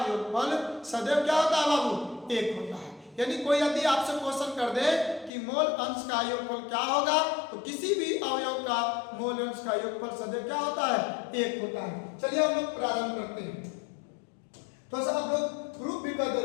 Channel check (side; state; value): right; drops out; at 5.3 s